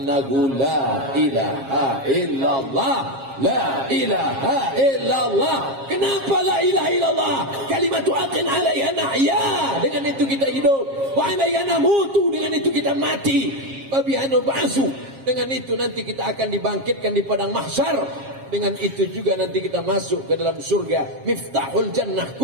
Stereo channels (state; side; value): late; left; 7.4 ms